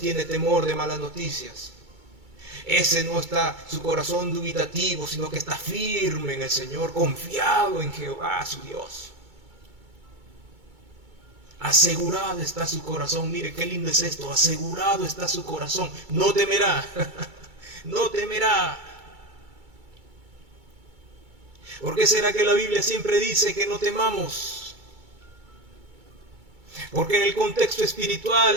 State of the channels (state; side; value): late; left; 2.3 ms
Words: temor de malas noticias. Ese no está su corazón dubitativo, sino que está firme en el Señor, confiado en Jehová su Dios. Asegurado está su corazón. Mire qué lindo es esto. Asegurado está su corazón. No temerá. No temerá. ¿Por qué será que la Biblia siempre dice que no temamos? Porque en el contexto espiritual,